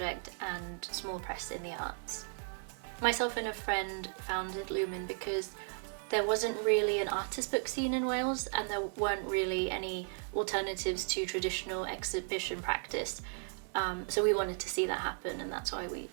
and small press in the arts. Myself and a friend founded Lumen because there wasn't really an artist book scene in Wales and there weren't really any alternatives to traditional exhibition practice. So we wanted to see that happen, and that's why we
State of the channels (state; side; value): silent; left; 54 dB below the other